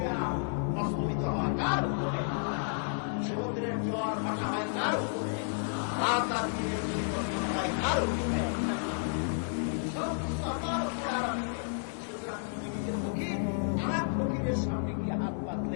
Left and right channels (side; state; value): right; silent; digital silence